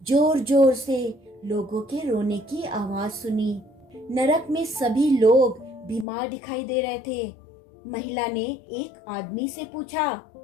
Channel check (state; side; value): drops out; right; at 6.1 s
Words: जोर जोर से लोगों के रोने की आवाज सुनी। नरक में सभी लोग बीमार दिखाई दे रहे थे। महिला ने एक आदमी से पूछा,